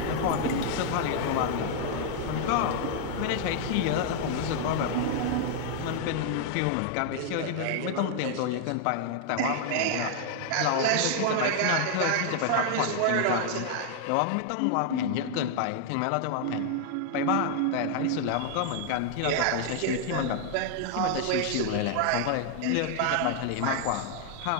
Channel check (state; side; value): different; both; correlation 0.00